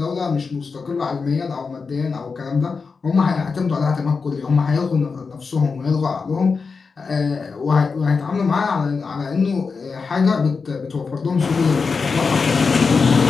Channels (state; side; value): quieter; right; 4.9 dB